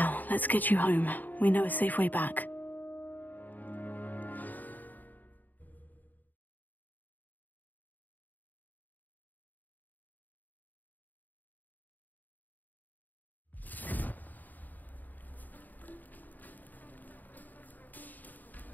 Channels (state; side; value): late; right; 0.085 ms